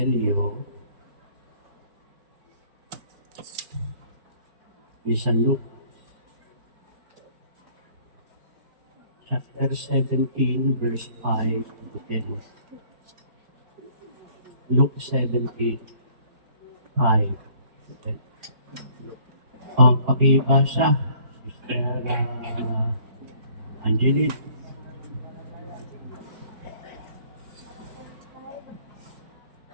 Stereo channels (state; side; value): late; left; 4.4 ms